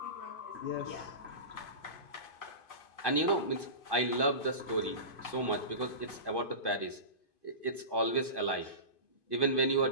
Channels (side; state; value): right; late; 2.5 ms